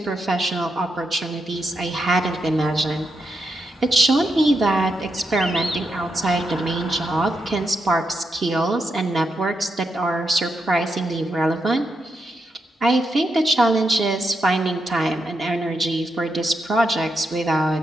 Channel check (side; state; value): both; normal; correlation 0.83